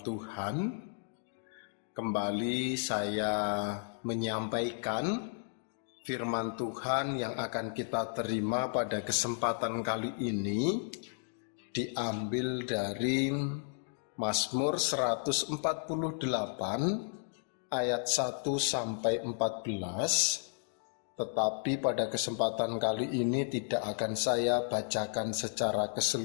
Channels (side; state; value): right; silent; digital silence